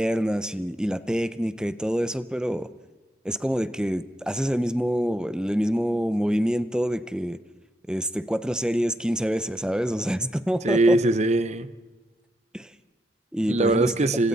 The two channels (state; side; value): normal; both; correlation 0.81